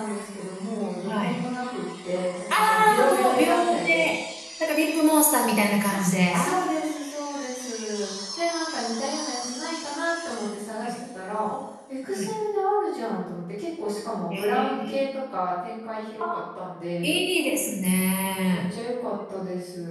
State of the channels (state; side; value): identical; both; correlation 1.00